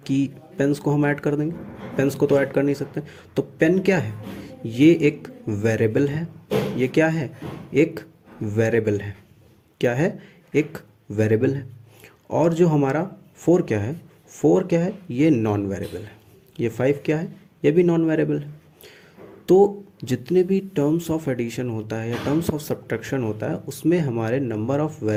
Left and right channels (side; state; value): both; identical; correlation 1.00